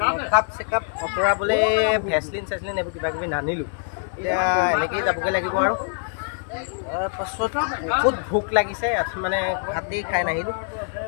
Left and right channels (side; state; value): right; silent; 56 dB below the other